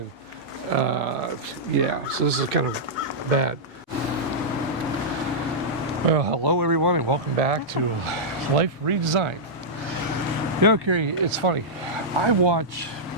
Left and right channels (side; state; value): both; normal; correlation -0.10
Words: yeah, so this is kind of bad. Well, hello everyone and welcome back to Life Redesigned. You know, Carrie, it's funny. I watch